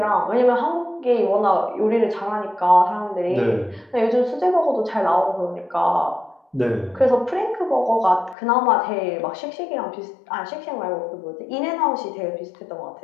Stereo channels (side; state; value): right; drops out; at 8.3 s